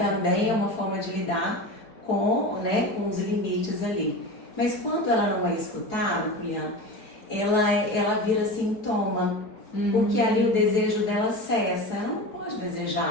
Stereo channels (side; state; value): right; late; 4.8 ms